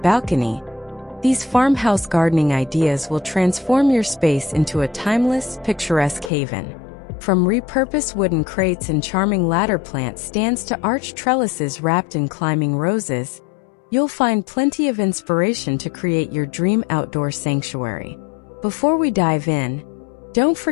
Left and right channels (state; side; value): drops out; right; at 6.3 s